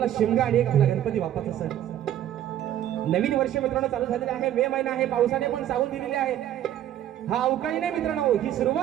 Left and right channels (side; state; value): left; quieter; 11.7 dB